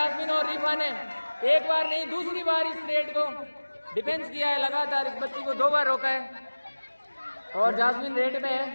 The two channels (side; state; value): both; inverted; correlation -1.00